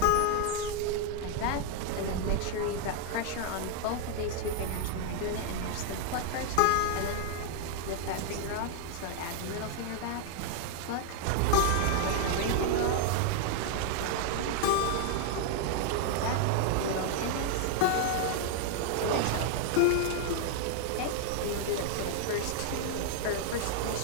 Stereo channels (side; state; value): both; different; correlation 0.00